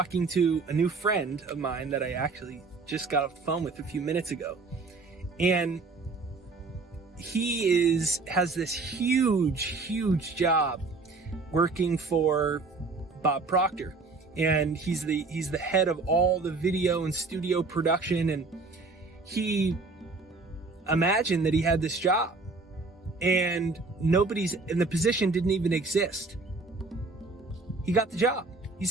to a new friend of mine that I actually just got off the phone with a few minutes ago. And he has this huge job working for Bob Proctor. And he's the head of all the video and studio production. And he imagined that he had this job and nobody's in the position didn't even exist. He got the job. He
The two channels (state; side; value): quieter; left; 3.8 dB